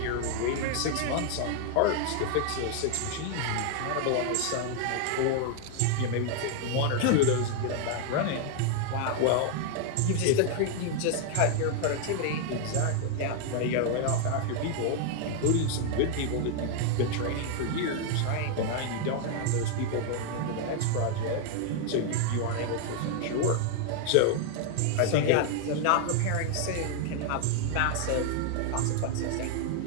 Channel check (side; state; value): both; different; correlation 0.00